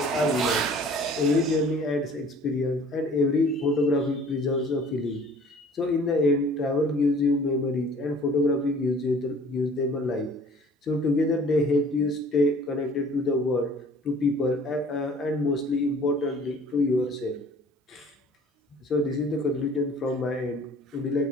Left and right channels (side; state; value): both; normal; correlation 0.51